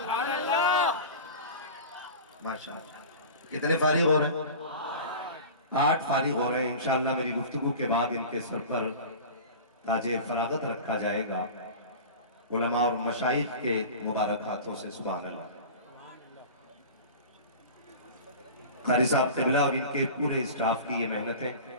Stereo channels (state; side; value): inverted; both; correlation -0.35